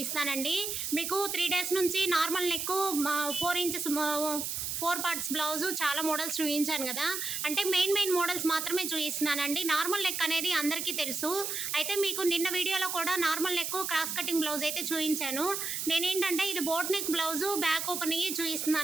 మీకు 3 days నుంచి normal neck 4 inches 4 parts blouse చాలా మోడల్స్ చూపించాను కదా. అంటే మెయిన్ మోడల్స్ మాత్రమే చూపిస్తున్నానండి. నార్మల్ నెక్ అనేది అందరికీ తెలుసు. అయితే మీకు నిన్న వీడియోలో కూడా normal neck cross cutting blouse అయితే చూపించాను. నేనేంటంటే ఇది boat neck blouse back open అయ్యి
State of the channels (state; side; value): noise; right; hiss, 3 dB below the sound